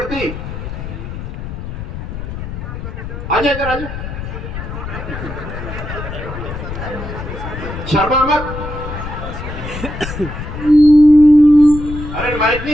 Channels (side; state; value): left; noise; rumble, 8 dB below the sound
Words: आजा इधर आजा, शर्मा मत। अरे माइक नहीं,